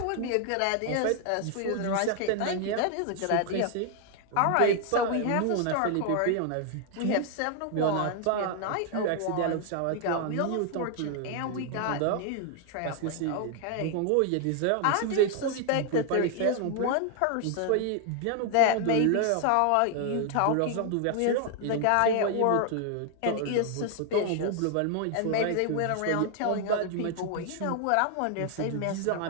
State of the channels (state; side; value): different; both; correlation 0.00